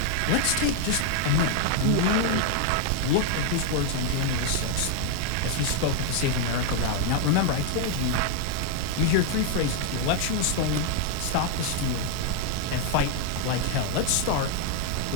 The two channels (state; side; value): different; both; correlation 0.00